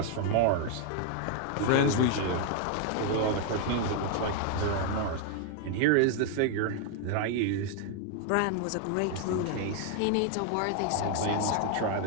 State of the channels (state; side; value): different; both; correlation 0.00